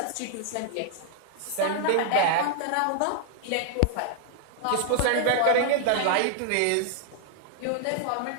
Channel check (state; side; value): different; both; correlation 0.00